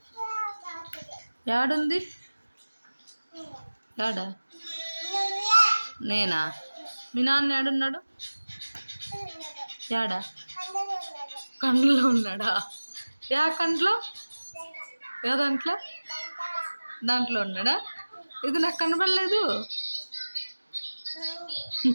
యాడుంది? యాడా? నేనా? మీ నాన్న యాడున్నాడు? యాడా? కండ్లో ఉన్నాడా? యా కండ్లో? యా దాంట్లో? దాంట్లో ఉన్నాడా? ఇది నాకు కనబడలేదు.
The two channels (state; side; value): inverted; both; correlation -1.00